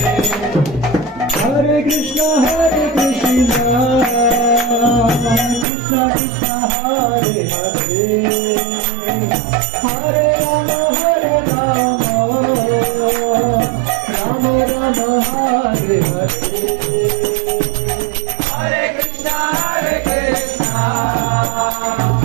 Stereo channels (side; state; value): left; drops out; at 5.7 s